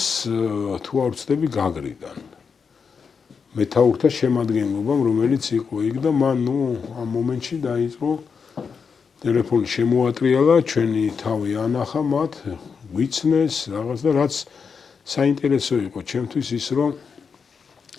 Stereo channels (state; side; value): quieter; right; 5.8 dB